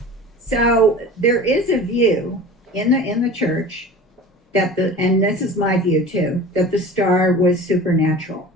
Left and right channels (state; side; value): normal; both; correlation 0.38